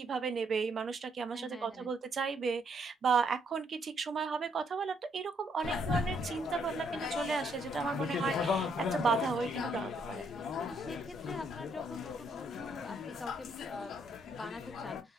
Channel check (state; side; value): normal; both; correlation 0.71